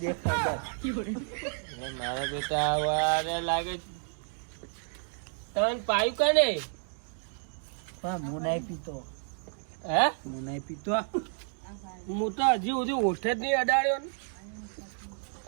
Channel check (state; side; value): silent; left; 57 dB below the other